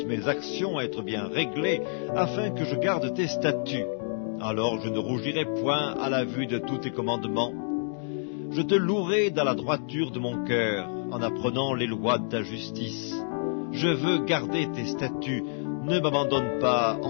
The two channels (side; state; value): right; silent; digital silence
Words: mes actions être bien réglées, afin que je garde tes statuts. Alors je ne rougirai point à la vue de tous tes commandements. Je te louerai dans la droiture de mon cœur, en apprenant les lois de ta justice. Je veux garder tes statuts, ne m'abandonne pas